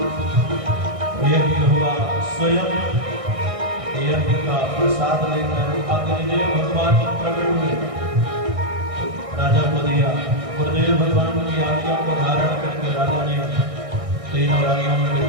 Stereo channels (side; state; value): left; late; 1.6 ms